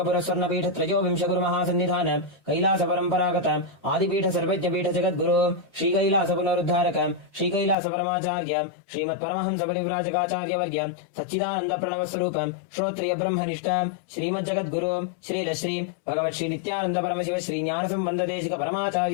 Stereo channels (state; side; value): drops out; right; at 7.8 s